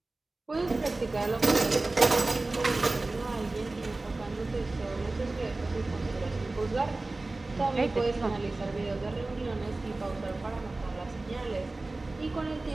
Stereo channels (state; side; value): quieter; left; 3.1 dB